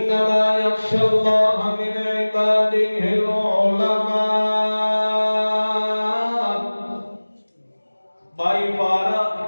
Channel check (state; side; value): inverted; both; correlation -1.00